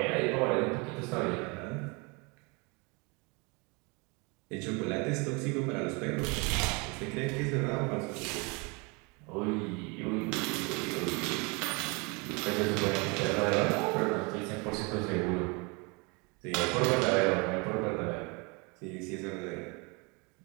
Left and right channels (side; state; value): left; quieter; 29.6 dB